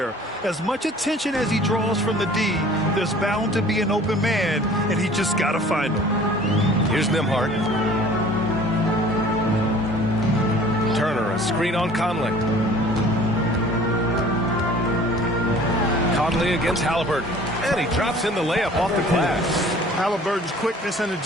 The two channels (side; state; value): both; normal; correlation 0.49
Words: As much attention as he draws from the D, there's bound to be an open man, and he just got to find him. Here's Nembhard. Turner, a screen on Conley. Conley against Halliburton. And he drops in the layup off the glass. Halliburton's quickness and